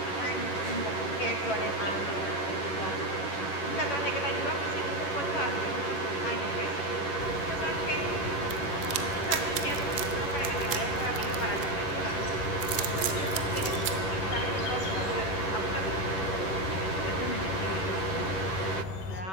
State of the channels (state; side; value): late; right; 11 ms